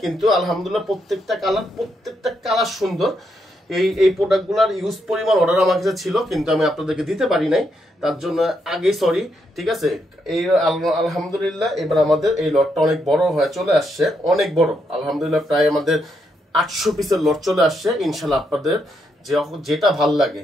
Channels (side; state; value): both; normal; correlation 0.79